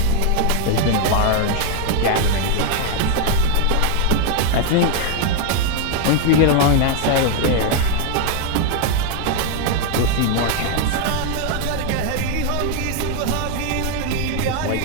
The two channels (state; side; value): different; both; correlation 0.01